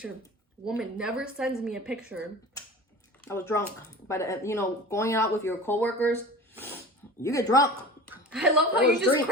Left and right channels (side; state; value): both; normal; correlation 0.36